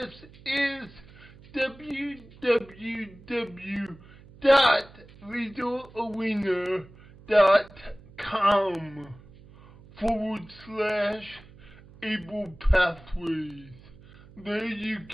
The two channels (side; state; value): right; noise; hum, 22 dB below the sound